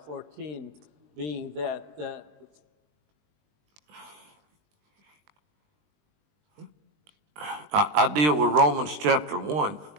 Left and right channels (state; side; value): late; left; 20 ms